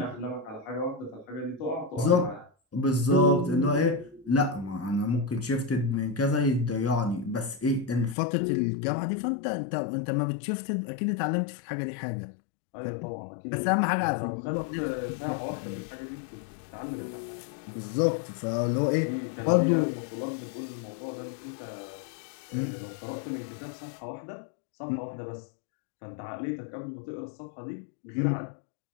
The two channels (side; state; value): right; drops out; at 8.2 s